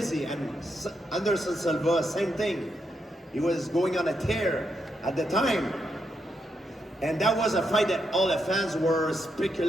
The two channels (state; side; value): normal; both; correlation 0.82